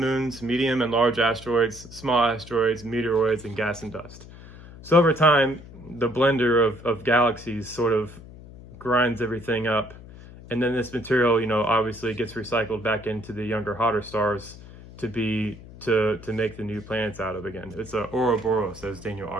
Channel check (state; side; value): noise; left; hum, 17 dB below the sound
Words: moons, medium and large asteroids, small asteroids, meteoroids, and gas and dust. So over time, the blender of galaxies sort of grinds everything up. And then this material, obviously gets recycled back into the younger, hotter stars to make the new planets out of again. It's a Ouroboros, as Daniel